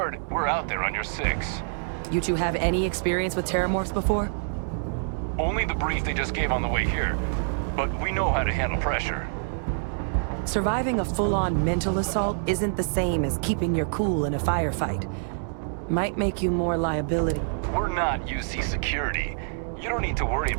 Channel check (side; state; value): left; silent; digital silence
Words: we're out there on your 6. You two have any experience with terramorphs before? Only the brief they just gave on the way here. But we know how to handle pressure. Surviving a full-on mental assault isn't the same as keeping your cool in a firefight. Might make you more liability. We're not UC security. You don't need to worry